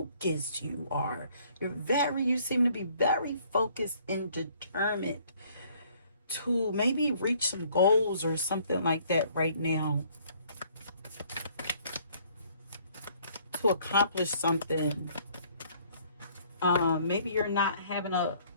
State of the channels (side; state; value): both; inverted; correlation -0.61